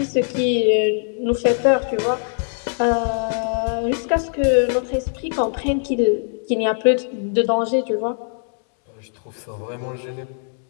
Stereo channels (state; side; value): silent; right; 64 dB below the other